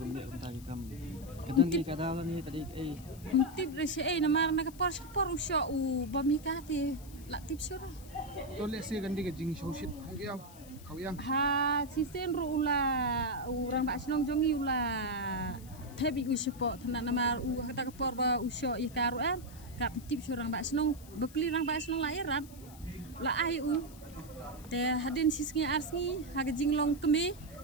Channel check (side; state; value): left; noise; hiss, 21 dB below the sound